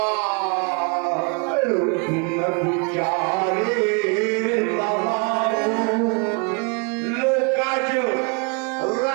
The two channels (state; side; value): quieter; left; 33.6 dB